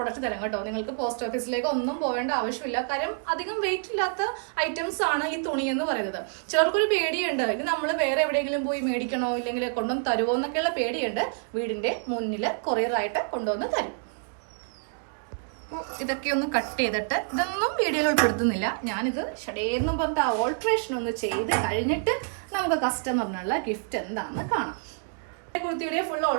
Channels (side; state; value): left; silent; 60 dB below the other